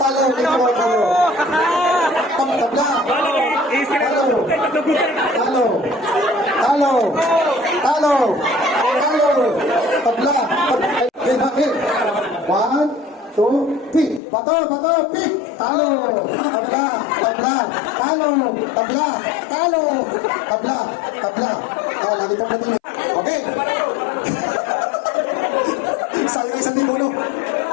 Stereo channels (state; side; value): drops out; right; at 14.2 s